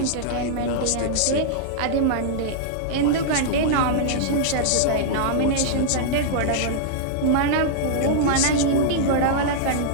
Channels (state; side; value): different; both; correlation -0.01